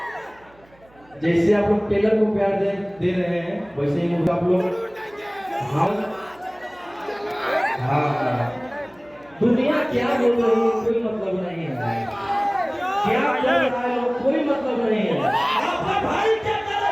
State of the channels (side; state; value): right; noise; hum, 29 dB below the sound